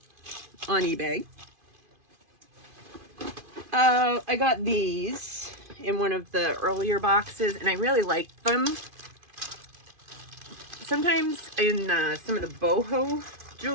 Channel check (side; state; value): left; late; 2.5 ms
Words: on eBay. I got these in one of the earlier boxes, and I really liked them. Sometimes in some of the boho